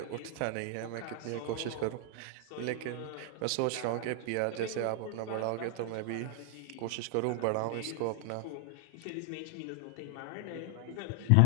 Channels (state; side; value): different; both; correlation 0.00